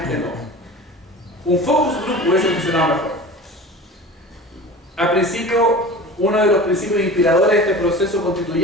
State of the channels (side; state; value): both; normal; correlation 0.36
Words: no. Un focus group hubiese funcionado mejor. Al principio, uno de los principios inspiradores de este proceso